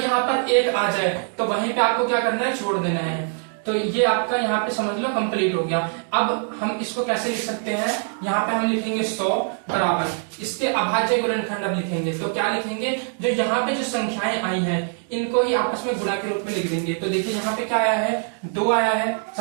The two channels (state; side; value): silent; left; 55 dB below the other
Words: यहाँ पर 1 आ जाए तो वहीं पे आपको क्या करना है, छोड़ देना है। तो ये आपका यहाँ पे समझ लो कंप्लीट हो गया। अब हम इसको कैसे लिख सकते हैं, यहाँ पे हम लिखेंगे 100 बराबर, इसके अभाज्य गुणनखंड अब लिखेंगे। तो क्या लिखेंगे, जो यहाँ पे जो संख्याएं आई हैं इनको ही आपस में गुणा के रूप में लिख देंगे। तो देखिए यहाँ पे क्या आया है, 2 आया है